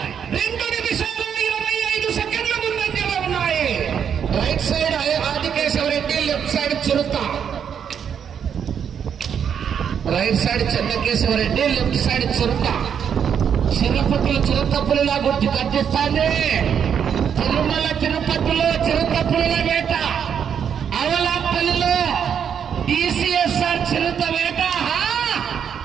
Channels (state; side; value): quieter; left; 7.9 dB